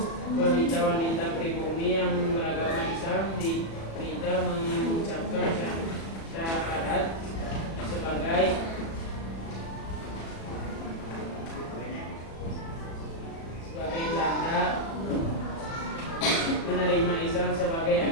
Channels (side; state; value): right; late; 36 ms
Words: Wanita-wanita pribumi yang beragama Islam diminta mengucapkan syahadat sebagai tanda menerima Islam sebagai